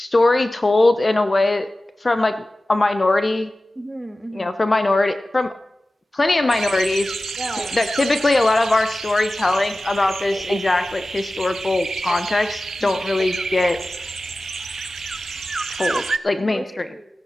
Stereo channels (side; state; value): both; normal; correlation 0.96